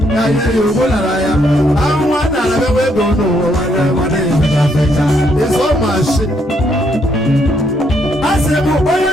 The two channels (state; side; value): normal; both; correlation 0.73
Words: ya ihe ya ogbolara ya anwa nara bewe ego n'ụwa nwanne nwanne ya fecha ịzọ mashi asịbụ onye